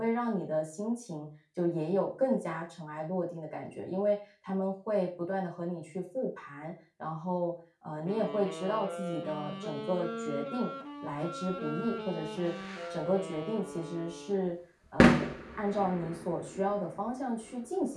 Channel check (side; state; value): both; identical; correlation 1.00